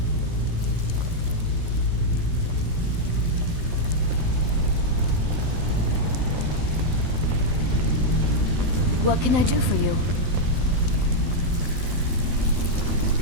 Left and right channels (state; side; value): late; left; 12 ms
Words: What can I do for you?